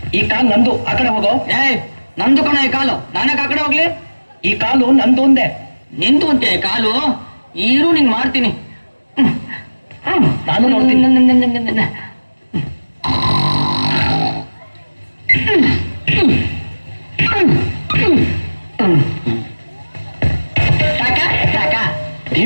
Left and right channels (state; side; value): inverted; both; correlation -1.00